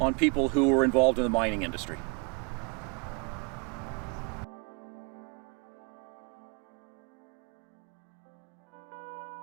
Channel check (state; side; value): quieter; left; 34.9 dB